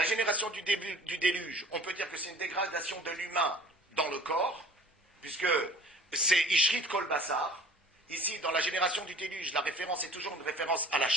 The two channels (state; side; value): normal; both; correlation 0.48